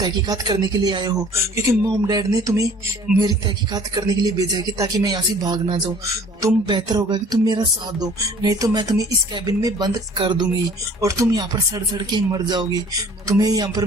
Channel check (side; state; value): both; normal; correlation 0.52